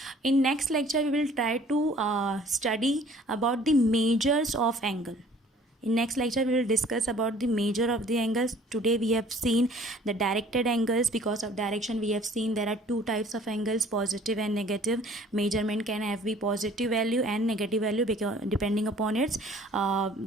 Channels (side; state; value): both; normal; correlation 0.53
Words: In next lecture we will try to study about the measures of angle. In next lecture we will discuss about the measure of the angles. Today we have seen the directed angles. Because of direction we have seen there are two types of angles, positive and negative. Measurement can have be positive value and negative value because depending upon its